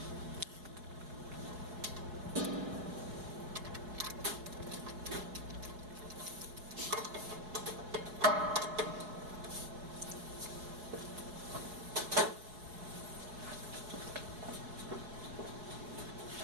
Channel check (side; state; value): left; late; 4.7 ms